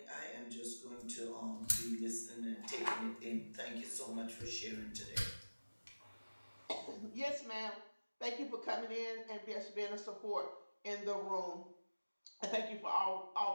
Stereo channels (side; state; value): both; inverted; correlation -1.00